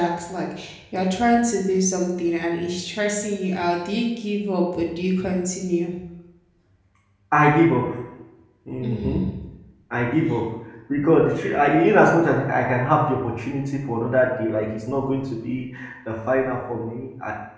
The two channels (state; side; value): identical; both; correlation 1.00